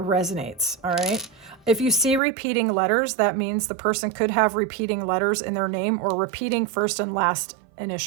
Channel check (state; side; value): drops out; left; at 2.2 s